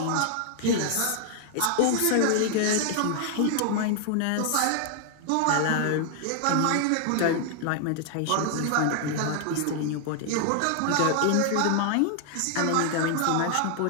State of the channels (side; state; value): both; different; correlation 0.00